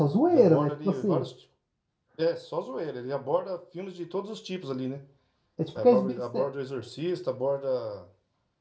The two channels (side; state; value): both; identical; correlation 1.00